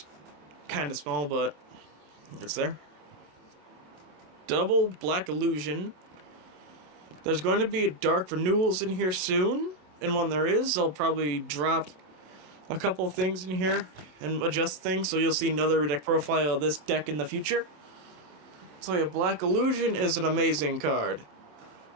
kind of small, but it's there. Double Black Illusion. There's going to be Dark Renewals in here soon, and when there is, I'll probably drop a couple of things in here and adjust things, so you'll see another deck profile of this deck in the future. So yeah, Black Illusion is an amazing card.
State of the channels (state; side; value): late; left; 27 ms